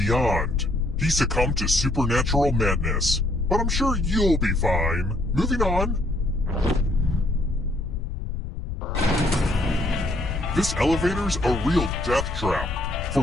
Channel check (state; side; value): noise; left; rumble, 5 dB below the sound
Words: He succumbed to supernatural madness, but I'm sure you'll be fine. Moving on. This elevator's a real death trap. For